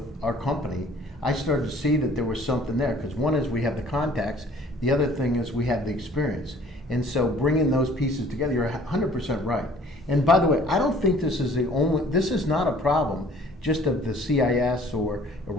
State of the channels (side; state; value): both; normal; correlation 0.54